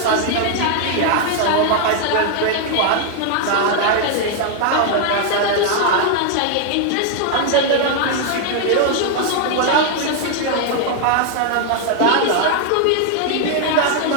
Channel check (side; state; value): both; different; correlation 0.00